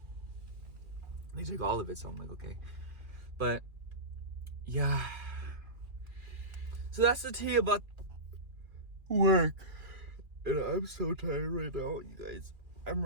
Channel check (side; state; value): left; late; 2.3 ms